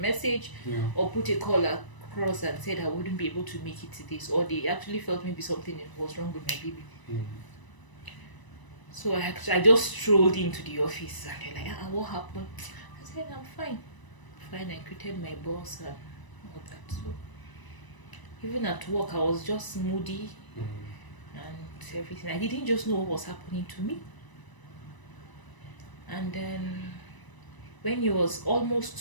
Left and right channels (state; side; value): late; right; 1.0 ms